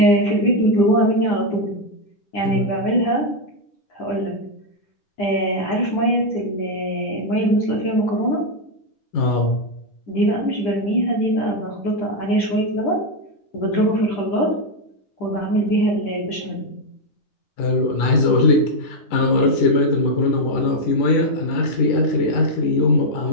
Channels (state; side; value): late; right; 10 ms